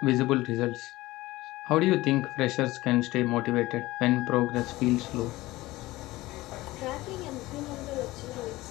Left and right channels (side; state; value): right; quieter; 18.7 dB